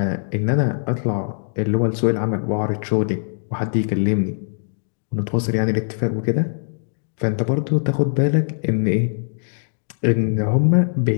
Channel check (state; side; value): silent; right; digital silence